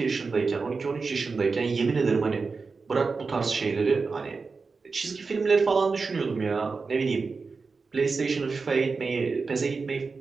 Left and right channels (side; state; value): left; quieter; 4.5 dB